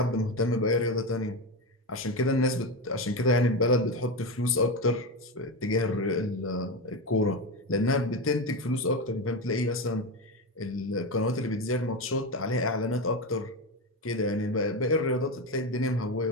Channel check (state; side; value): normal; both; correlation 0.16